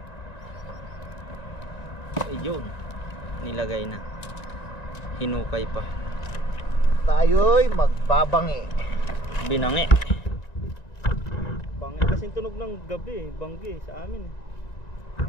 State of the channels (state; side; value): late; right; 1.9 ms